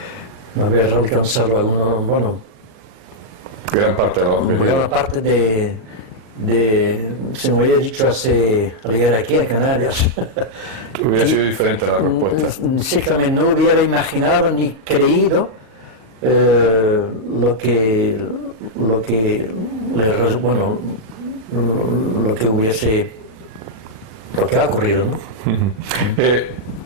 haber alcanzado algunos, bueno, Gran parte de los objetivos. gran parte se me había dicho al llegar aquí a Canarias. Hubiera sido diferente la respuesta. Sí, que no hubiera imaginado ni creído lo que ha ocurrido, ¿no?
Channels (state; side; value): late; left; 39 ms